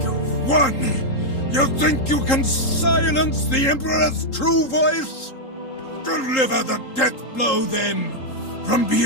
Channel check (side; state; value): right; late; 3.8 ms